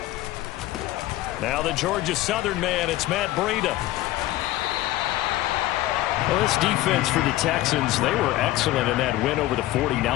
Now the Georgia Southern man, it's Matt Breida. Well, this defense for the Texans, they were excellent in that win over the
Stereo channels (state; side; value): quieter; right; 16.0 dB